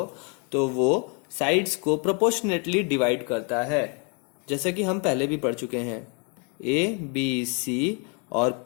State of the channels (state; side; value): quieter; right; 36.2 dB